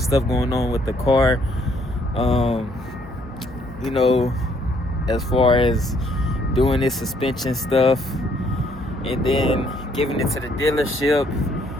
stuff going on with the car. You know, as far as doing this suspension stuff, and then giving it to the dealership,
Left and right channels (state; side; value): normal; both; correlation 0.67